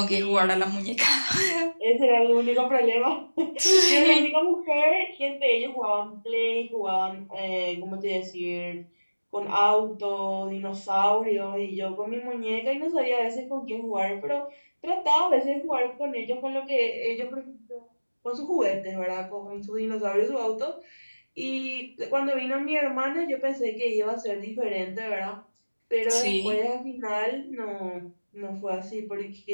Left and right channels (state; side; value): inverted; both; correlation -1.00